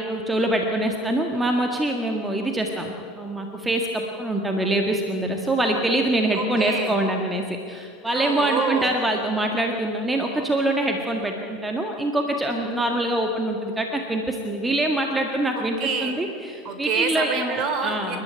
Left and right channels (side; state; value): both; normal; correlation 0.56